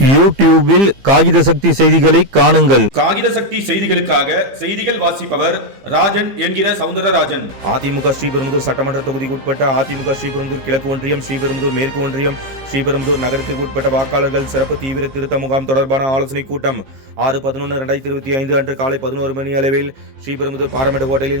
யூடியூபில் காகித சக்தி செய்திகளை காணுங்கள். காகித சக்தி செய்திகளுக்காக செய்திகள் வாசிப்பவர் ராஜன் என்கிற சவுந்தரராஜன். அதிமுக ஸ்ரீபெரும்புதூர் சட்டமன்ற தொகுதிக்கு உட்பட்ட அதிமுக ஸ்ரீபெரும்புதூர் கிழக்கு ஒன்றியம், ஸ்ரீபெரும்புதூர் மேற்கு ஒன்றியம், ஸ்ரீபெரும்புதூர் நகரத்திற்கு உட்பட்ட வாக்காளர்கள் சிறப்பு தீவிர திருத்த முகாம் தொடர்பான ஆலோசனை கூட்டம் 6/11/2025 அன்று காலை 11 மணி அளவில் ஸ்ரீபெரும்புதூர் பாராமெட்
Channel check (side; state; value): left; late; 15 ms